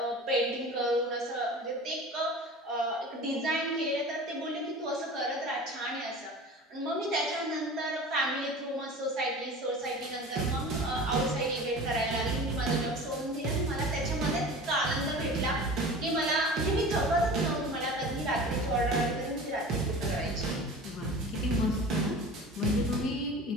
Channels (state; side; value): normal; both; correlation 0.37